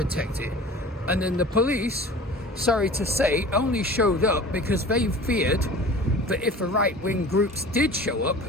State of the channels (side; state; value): both; normal; correlation 0.41